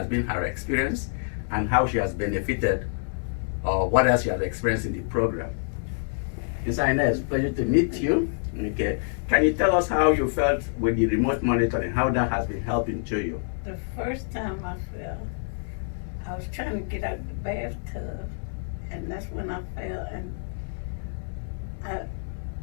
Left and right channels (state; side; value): silent; right; digital silence